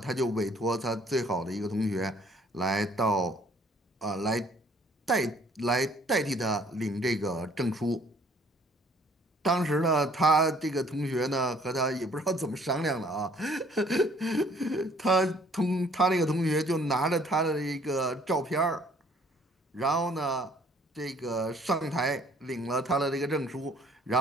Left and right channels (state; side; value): normal; both; correlation 0.59